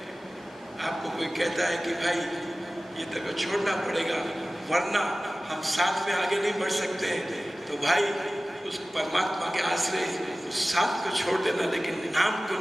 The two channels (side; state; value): both; normal; correlation 0.97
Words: आपको कोई कहता है कि भाई ये तक छोड़ना पड़ेगा वरना हम साथ में आगे नहीं बढ़ सकते, तो भाई उस परमात्मा के आश्रय उस साथ को छोड़ देना, लेकिन नाम को